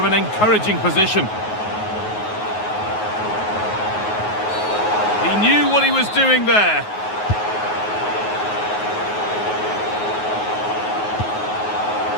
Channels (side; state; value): right; late; 9.4 ms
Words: an encouraging position. He knew what he was doing there.